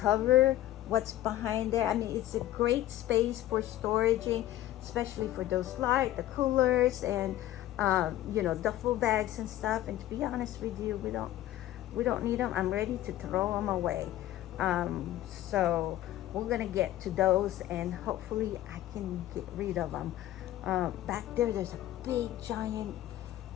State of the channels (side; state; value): right; quieter; 13.9 dB